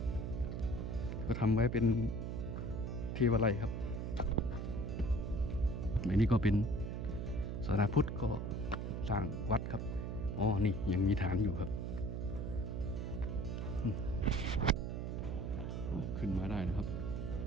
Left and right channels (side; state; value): right; noise; hum, 3 dB below the sound